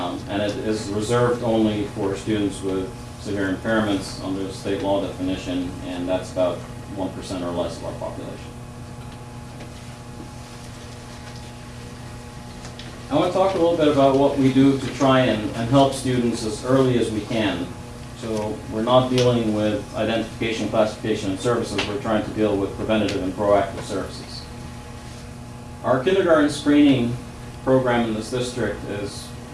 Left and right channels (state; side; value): identical; both; correlation 1.00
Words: And it is reserved only for students with severe impairments under the state law definition, and that's about 1% or less of our population. I want to talk a little bit about what we do to try and help students as early as we can. So we're not dealing with identification, classification, and services. We're trying to deal with preventative and proactive services. Our kindergarten screening program in this district is